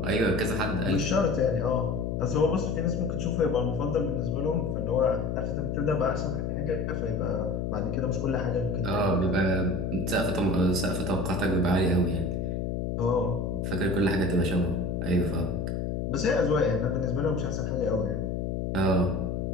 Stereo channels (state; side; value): noise; left; hum, 1 dB below the sound